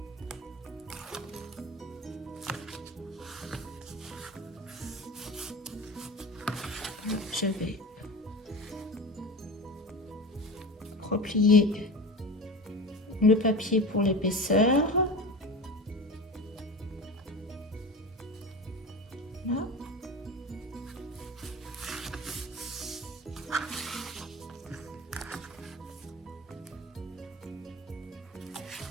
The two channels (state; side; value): normal; both; correlation 0.30